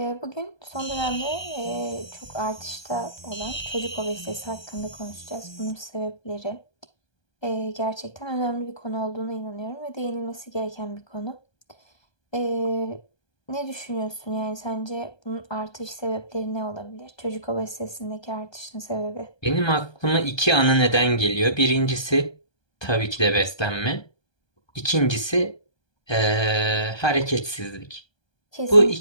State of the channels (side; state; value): right; late; 1.2 ms